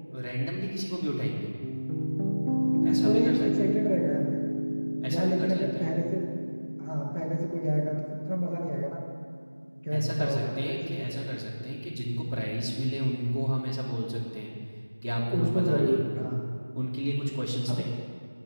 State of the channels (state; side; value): inverted; both; correlation -1.00